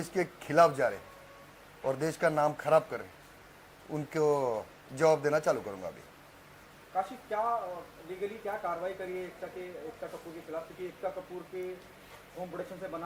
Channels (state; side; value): identical; both; correlation 1.00